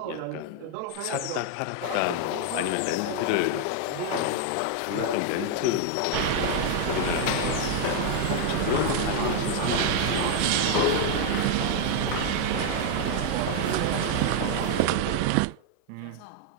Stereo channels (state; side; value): different; both; correlation 0.00